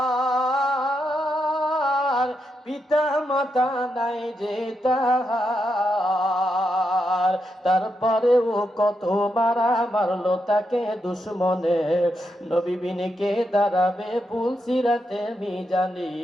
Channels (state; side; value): normal; both; correlation 0.83